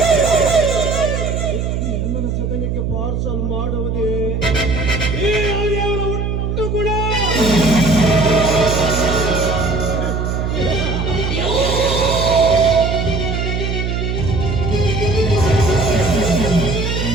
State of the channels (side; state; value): right; noise; hum, 1 dB below the sound